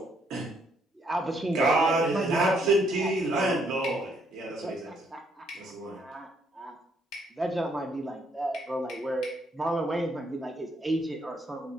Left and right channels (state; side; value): normal; both; correlation 0.71